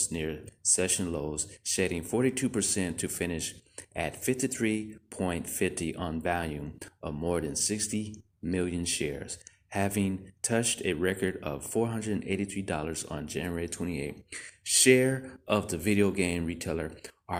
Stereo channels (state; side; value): identical; both; correlation 1.00